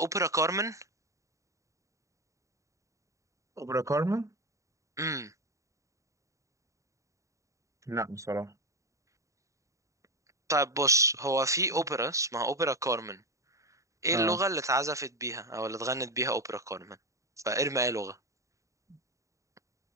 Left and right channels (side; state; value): left; late; 0.15 ms